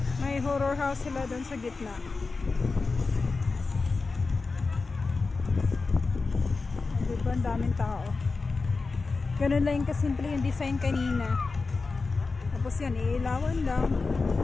May horror house sila doon sa gitna. Diba? Ang daming tao. Ganun lang yung kasimple yung design kanina. Tapos yan, iilawan lang.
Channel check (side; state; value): right; quieter; 4.1 dB